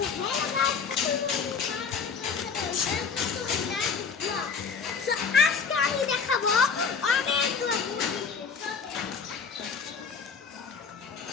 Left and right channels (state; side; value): quieter; right; 5.7 dB